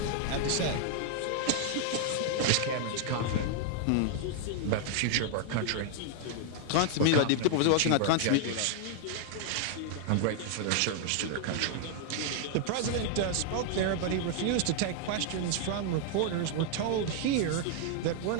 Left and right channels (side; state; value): both; different; correlation 0.00